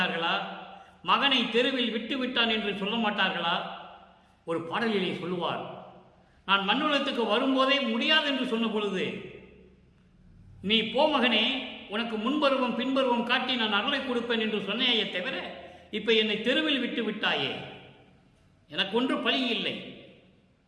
மகனை தெருவில் விட்டு விட்டான் என்று சொல்ல மாட்டார்களா? ஒரு பாடலிலே சொல்லுவார், நான் மண்ணுலகத்துக்கு வரும்போதே முடியாது என்று சொன்ன பொழுது, நீ போ மகனே, உனக்கு முன்பருவம் பின்பருவம் காட்டி நான் அருளை கொடுப்பேன் என்று சொன்னேயே தவிர, இப்ப என்னை தெருவில் விட்டு விட்டாயே, எனக்கு ஒன்று பழி இல்லை.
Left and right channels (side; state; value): both; identical; correlation 1.00